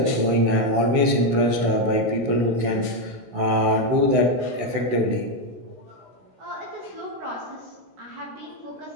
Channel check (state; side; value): late; left; 16 ms